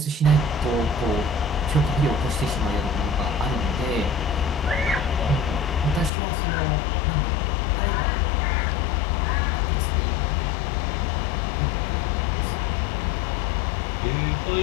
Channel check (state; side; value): drops out; right; at 6.1 s